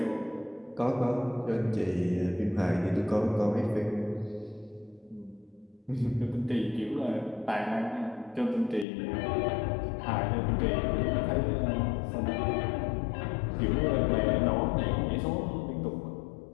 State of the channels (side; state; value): right; drops out; at 8.8 s